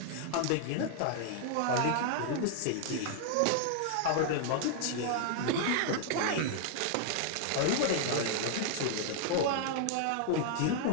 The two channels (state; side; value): different; both; correlation 0.00